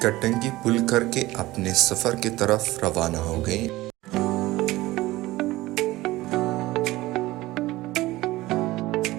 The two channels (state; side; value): quieter; left; 18.3 dB